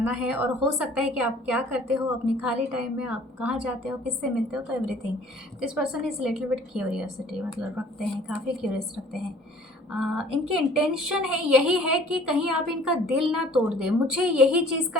है। और हो सकता है कि आप क्या करते हो अपनी खाली टाइम में, आप कहाँ जाते हो, किससे मिलते हो, तो everything. This person is little bit curiosity, मतलब रखते हैं, काफ़ी क्यूरियस रखते हैं। इनकी इंटेंशन है यही है कि कहीं आप इनका दिल ना तोड़ दें। मुझे यही चीज़ का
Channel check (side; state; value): both; normal; correlation 0.52